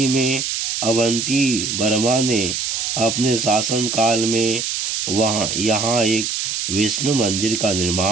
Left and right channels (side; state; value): right; noise; hiss, 2 dB below the sound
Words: में अवंती वर्मा ने अपने शासनकाल में यहाँ एक विष्णु मंदिर का